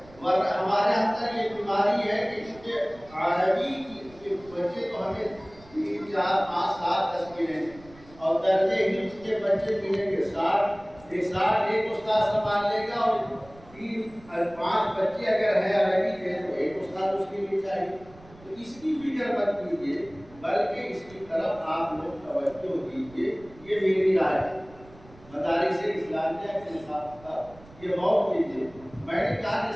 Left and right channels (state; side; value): noise; right; rumble, 23 dB below the sound